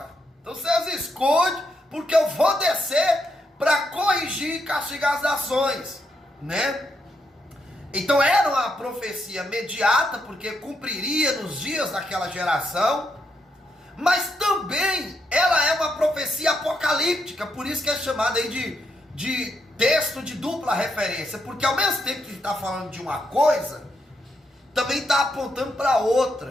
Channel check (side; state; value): both; normal; correlation 0.80